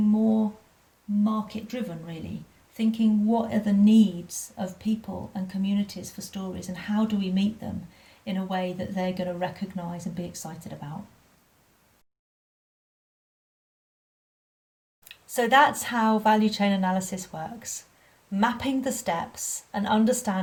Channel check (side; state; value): both; identical; correlation 1.00